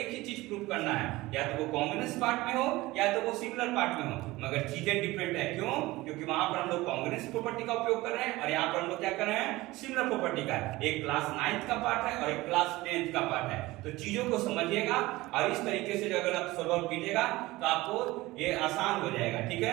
ही चीज प्रूव करना है, या तो वो कांग्रुएंस पार्ट में हो या तो वो सिमिलर पार्ट में हो, मगर चीजें डिफरेंट है। क्यों, क्योंकि वहां पर हम लोग कांग्रुएंस प्रॉपर्टी का उपयोग कर रहे हैं और यहाँ पर हम लोग क्या कर रहे हैं, सिमिलर प्रॉपर्टी का। एक क्लास 9th का पार्ट है और एक क्लास 10th का पार्ट है। तो चीजों को समझिएगा और इस तरीके से अगर आप सॉल्व कीजिएगा तो आपको ये आसान हो जाएगा, ठीक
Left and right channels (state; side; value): quieter; left; 19.5 dB